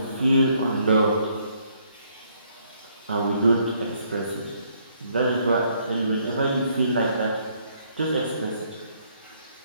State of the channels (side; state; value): both; inverted; correlation -0.68